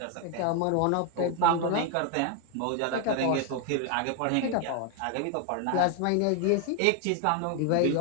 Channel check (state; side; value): different; both; correlation 0.01